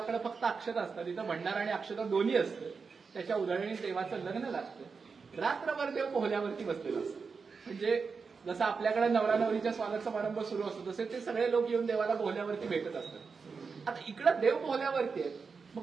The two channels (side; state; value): left; quieter; 5.1 dB